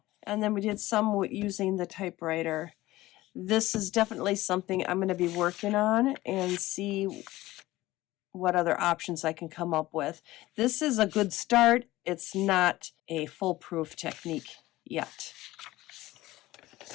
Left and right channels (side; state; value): right; quieter; 17.4 dB